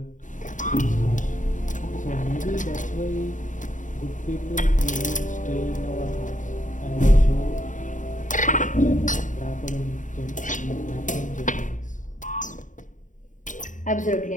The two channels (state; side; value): late; right; 0.37 ms